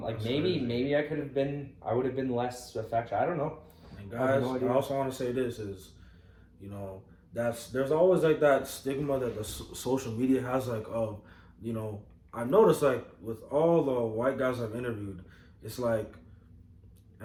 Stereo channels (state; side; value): identical; both; correlation 1.00